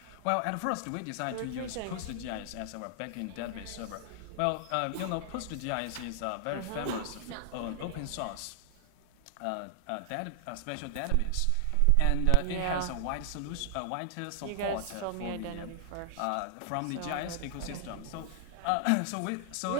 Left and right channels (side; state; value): both; different; correlation 0.00